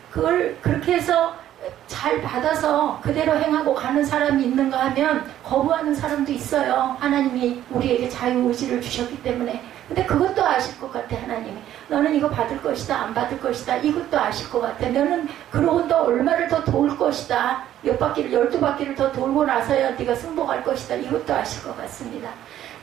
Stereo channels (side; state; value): left; quieter; 12.0 dB